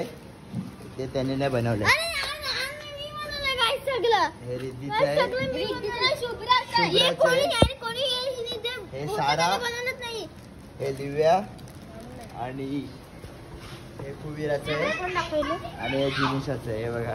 ते त्याने नाही बनवलं. हे रिद्धीचं आहे. हे सारा. हे दिव्या आणि हे कुबीराचं आहे आणि हे जिनिशाचं आहे. हे बघा.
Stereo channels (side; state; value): both; identical; correlation 1.00